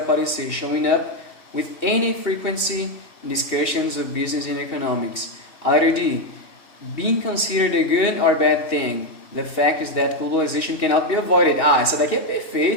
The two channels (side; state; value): right; late; 2.7 ms